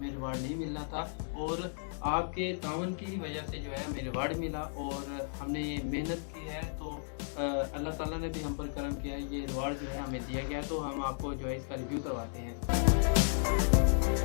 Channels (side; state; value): right; silent; digital silence